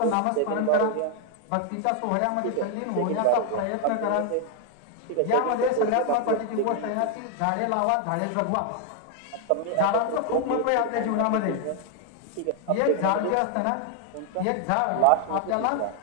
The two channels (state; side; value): different; both; correlation 0.00